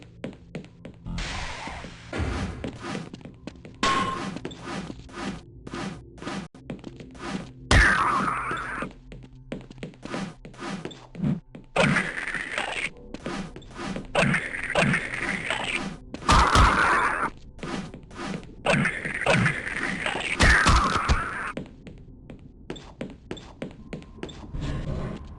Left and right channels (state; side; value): identical; both; correlation 1.00